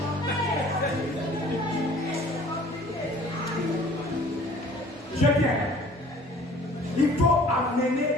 J'aime bien. Il faut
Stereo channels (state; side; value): normal; both; correlation 0.51